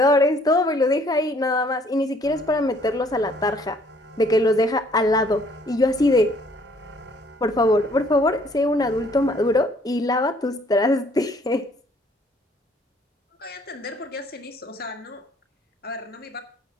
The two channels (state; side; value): normal; both; correlation 0.61